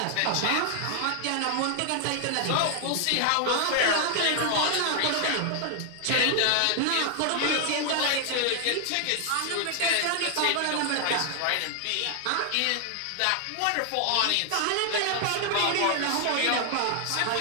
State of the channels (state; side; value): different; both; correlation 0.00